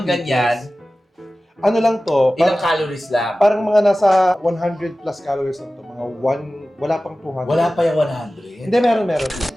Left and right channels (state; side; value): normal; both; correlation 0.96